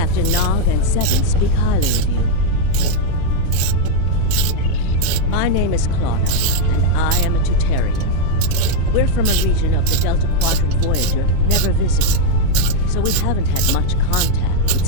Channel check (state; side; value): different; both; correlation 0.01